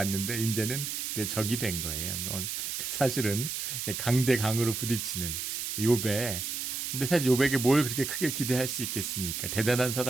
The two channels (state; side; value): noise; right; hiss, 3 dB below the sound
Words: 이제는 내 적이 된 거예요. 사실은 강대 강으로 부딪히는 욥에, 근데 사실 욥에게 뭘 그렇게 크게 기대할 수 있겠습니까? 대단한